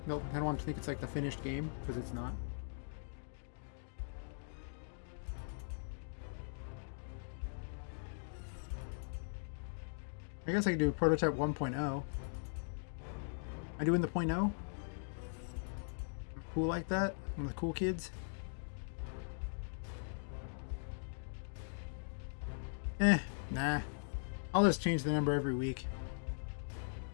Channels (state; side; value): silent; right; digital silence